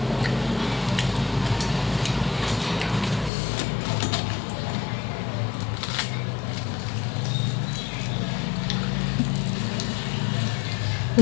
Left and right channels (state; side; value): drops out; right; at 3.3 s